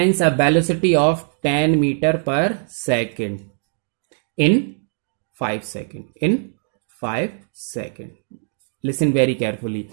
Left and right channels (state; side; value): silent; left; 65 dB below the other